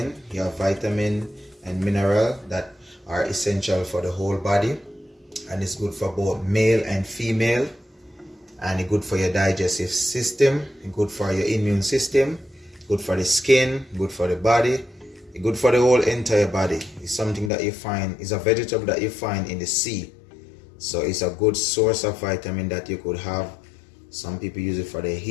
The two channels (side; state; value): right; drops out; at 17.5 s